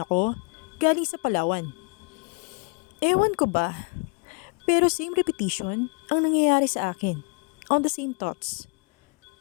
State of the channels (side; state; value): right; quieter; 34.3 dB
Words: ako galing sa Palawan. Ewan ko ba, pero same repetition ang nangyayari sa akin on the same thoughts